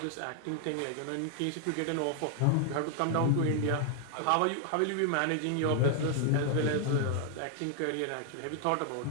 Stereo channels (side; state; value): both; different; correlation 0.00